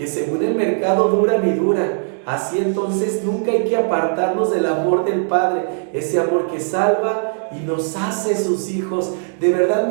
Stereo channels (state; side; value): silent; left; 65 dB below the other